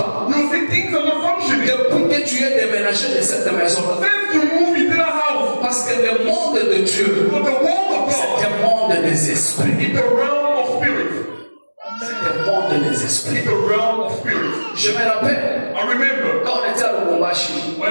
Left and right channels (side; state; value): both; inverted; correlation -1.00